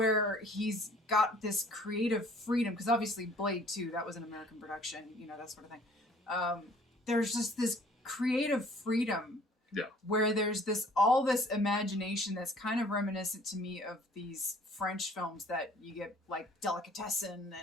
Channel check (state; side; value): normal; both; correlation 0.55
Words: he's got this creative freedom, because obviously Blade 2, that was an American production, that sort of thing. There's just this creative freedom. Yeah. Where there's all this imagination that's kind of reminiscent to me of these French films that you get, like Delicatessen